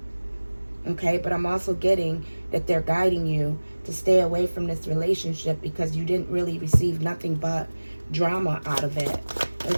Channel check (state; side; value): inverted; both; correlation -1.00